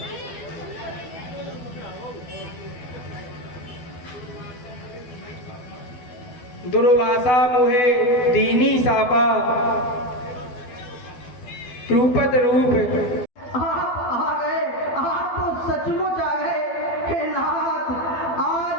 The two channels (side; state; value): right; late; 12 ms